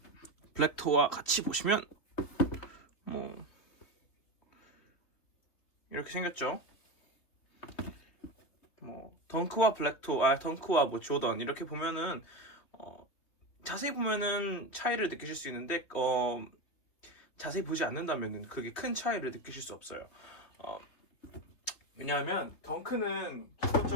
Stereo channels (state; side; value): late; right; 3.4 ms